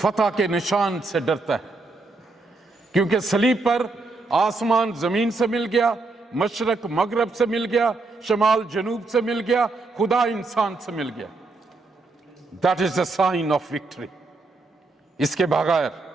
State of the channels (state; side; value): quieter; left; 3.4 dB